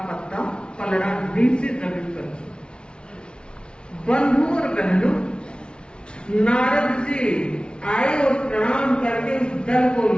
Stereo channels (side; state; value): right; late; 0.056 ms